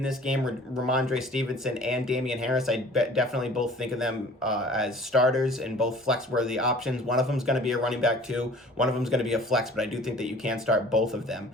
this game, Ramondre Stevenson and Damian Harris. I definitely both think of them as starters and both flex-worthy options. One of them is going to be a running back too. One of them is going to be a flex, but I do think that you can start both of them.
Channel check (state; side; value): normal; both; correlation 0.48